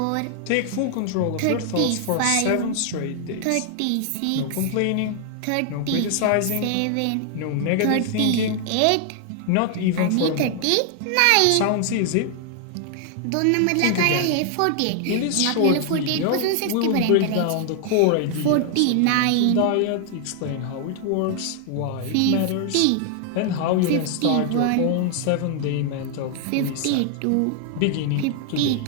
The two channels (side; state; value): both; different; correlation 0.00